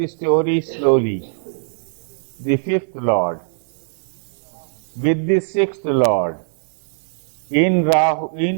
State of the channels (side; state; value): left; silent; digital silence